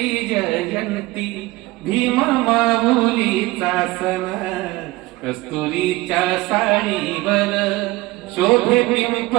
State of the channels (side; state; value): left; quieter; 19.9 dB